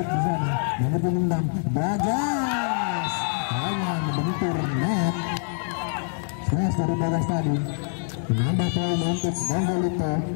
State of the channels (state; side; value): silent; right; 62 dB below the other